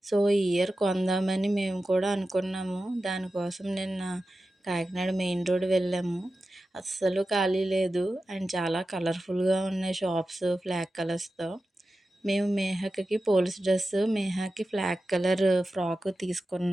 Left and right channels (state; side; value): normal; both; correlation 0.93